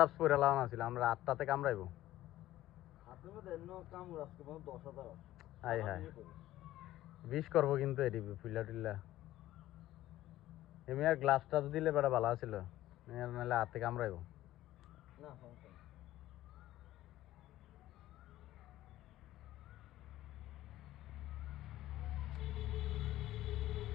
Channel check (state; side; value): quieter; right; 14.8 dB